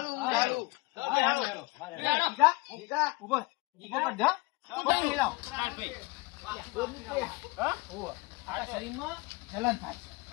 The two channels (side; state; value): right; quieter; 23.8 dB